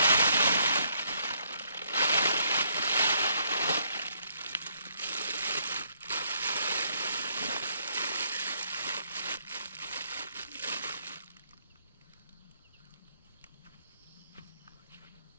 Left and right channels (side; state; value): both; inverted; correlation -0.70